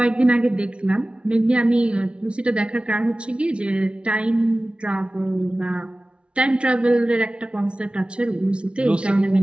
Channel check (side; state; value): left; late; 0.058 ms